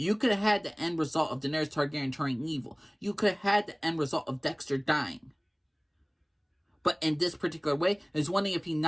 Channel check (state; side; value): identical; both; correlation 1.00